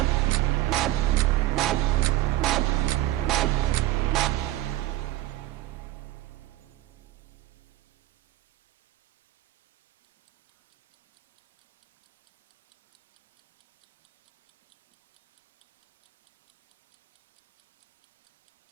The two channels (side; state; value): left; quieter; 15.7 dB